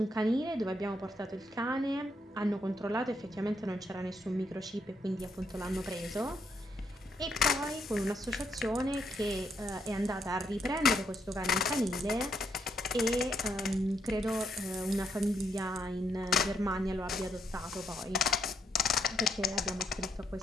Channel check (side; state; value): both; normal; correlation 0.76